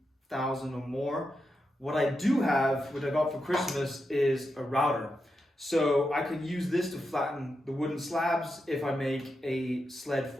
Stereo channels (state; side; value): normal; both; correlation 0.87